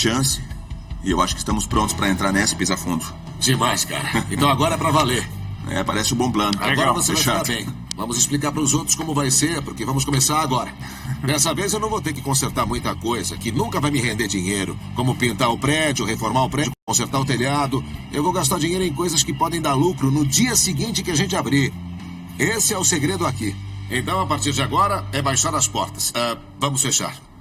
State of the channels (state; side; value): identical; both; correlation 1.00